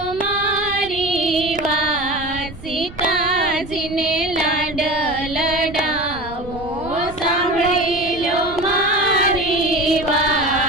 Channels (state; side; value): noise; right; rumble, 16 dB below the sound